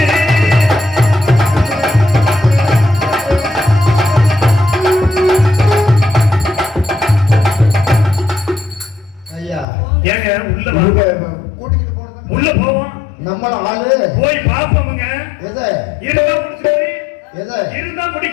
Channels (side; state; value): right; drops out; at 9.7 s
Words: ஏங்க உள்ள போவோம். நம்மள ஆளு போய் பாப்போமுங்க. எதை இருந்தா முடிக்கிறேன். எதை இருந்தா